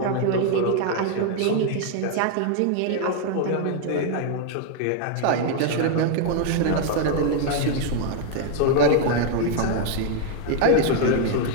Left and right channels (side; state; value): both; different; correlation 0.00